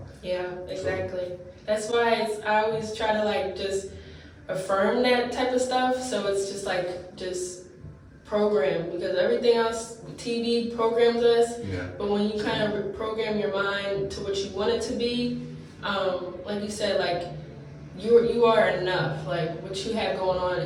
Yeah, exactly. That's why I always try to just affirm that type of stuff. So it's just program, because everything else, TV programs us. But when you kind of reprogram your mind to what you want it to be, like you said, you are enough. Like what you have going on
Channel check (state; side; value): identical; both; correlation 1.00